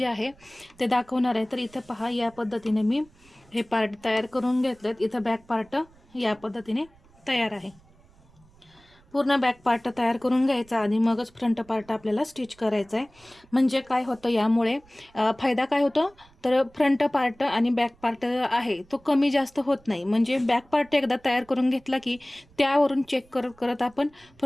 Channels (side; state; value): right; noise; rumble, 29 dB below the sound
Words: आहे ते दाखवणार आहे। तर इथं पहा, या पद्धतीने मी हे पार्ट तयार करून घेतलेत। इथं बॅक पार्ट या पद्धतीने तयार आहे। पूर्ण बॅक पार्ट तयार करून घ्यायचा आणि मगच फ्रंट पार्ट आपल्याला स्टिच करायचा आहे। म्हणजे काय होतं, यामुळे फायदा काय होतो, तर फ्रंट पार्ट आणि बॅक पार्ट आहे तो कमी जास्त होत नाही। म्हणजे बॅक पार्ट एकदा तयार करून घेतला की त्यावरून चेक करत करत आपण